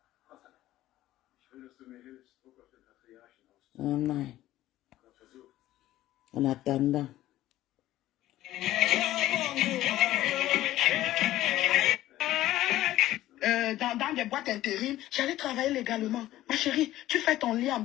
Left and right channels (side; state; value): right; quieter; 14.8 dB